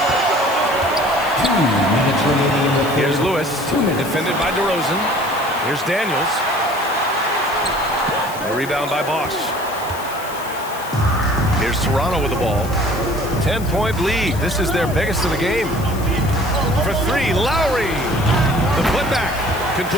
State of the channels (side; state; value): left; noise; hiss, 15 dB below the sound